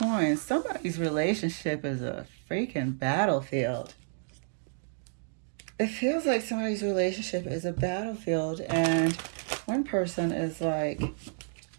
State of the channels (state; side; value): silent; left; digital silence